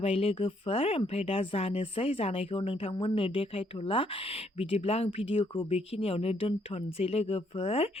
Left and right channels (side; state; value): both; normal; correlation 0.70